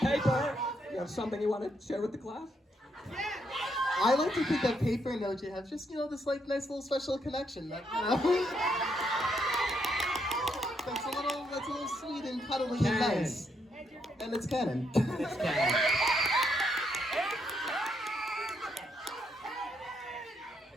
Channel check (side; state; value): both; normal; correlation 0.76